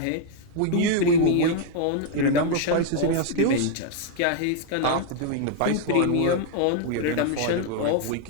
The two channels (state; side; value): different; both; correlation 0.00